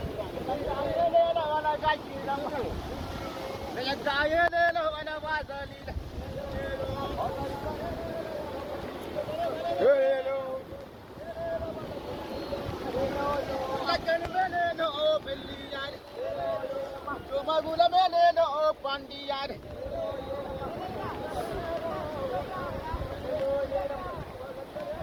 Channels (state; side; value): identical; both; correlation 1.00